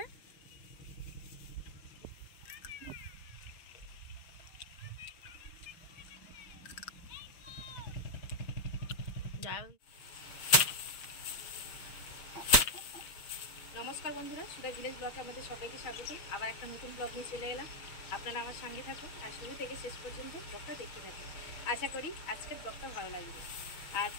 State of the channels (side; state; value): right; late; 6.3 ms